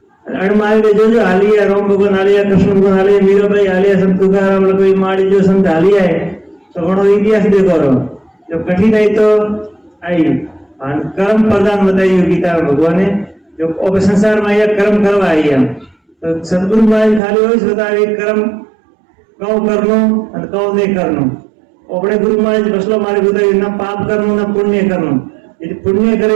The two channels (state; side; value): drops out; left; at 17.2 s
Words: अण मार के जो हालिया राम भगवान हालिया कृष्ण भगवान हालिया मीराबाई हालिया संत तुकाराम लक्ष्मी माड़ी जो संत हालिया है तो घणो इतिहास देखो जो कठिनाई तो आई और कर्म प्रदान बताइए गीता में भगवान ने जो संसार में आया कर्म करवा आई है तो सदगुरु महाराज खाली वही बताए कर्म कौ करनो और कौ नहीं करनो अपने गुरु महाराज फसलो मारे बताइए ना पाप करनो ना पुण्य करनो यदि पुण्य